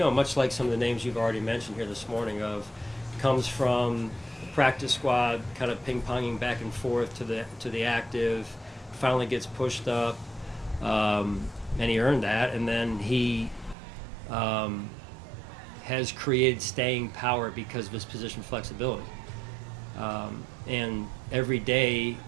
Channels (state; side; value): drops out; left; at 13.8 s